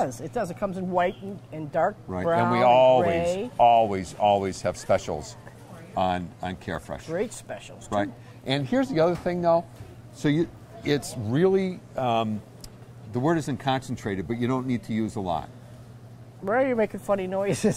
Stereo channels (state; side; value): identical; both; correlation 1.00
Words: It does. It comes in white and dark Right. brown And we gray. always have specials on Carefresh. Great specials. Right. Too. And here's the other thing, though. So it's really, the word isn't concentrated, but you don't need to use a lot. Why are you making funny